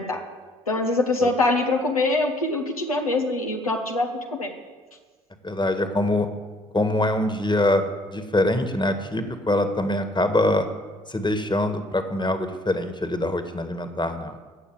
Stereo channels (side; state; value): both; normal; correlation 0.62